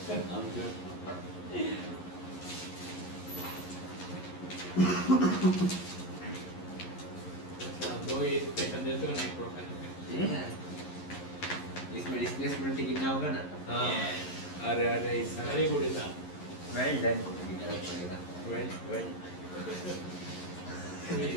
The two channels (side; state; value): right; late; 11 ms